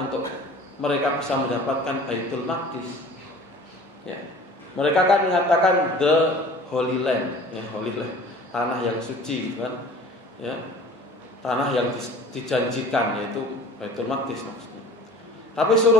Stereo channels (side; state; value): both; normal; correlation 0.45